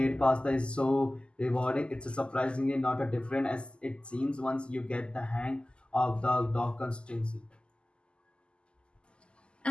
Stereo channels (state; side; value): late; right; 0.050 ms